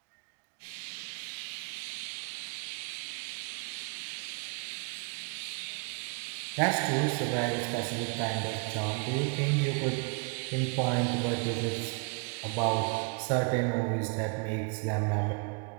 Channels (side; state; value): left; quieter; 34.7 dB